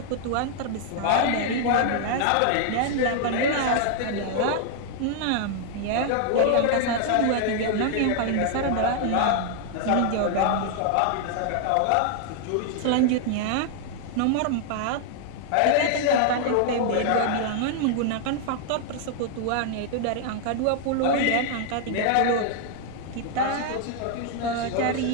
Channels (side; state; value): both; different; correlation -0.01